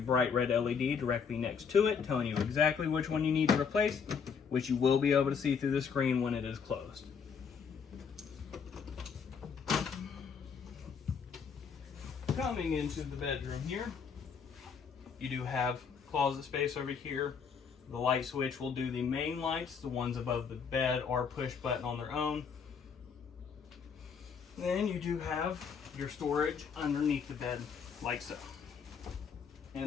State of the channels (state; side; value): quieter; right; 6.3 dB